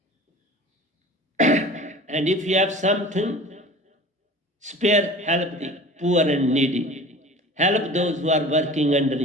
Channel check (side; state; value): both; normal; correlation 0.40